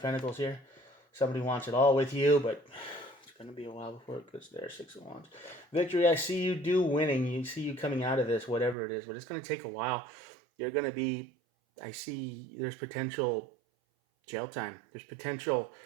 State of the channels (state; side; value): drops out; left; at 8.8 s